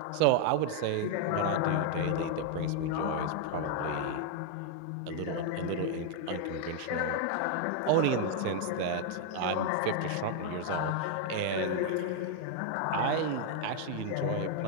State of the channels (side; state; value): both; different; correlation 0.00